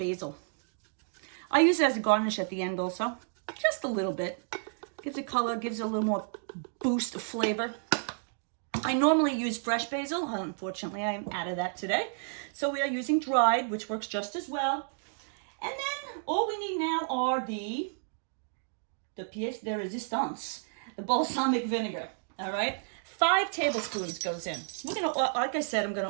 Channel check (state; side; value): silent; left; digital silence